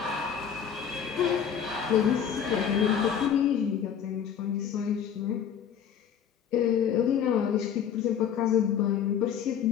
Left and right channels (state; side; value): quieter; right; 8.3 dB